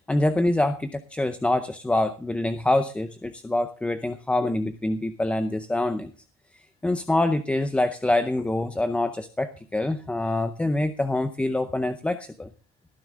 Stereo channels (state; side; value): normal; both; correlation 0.93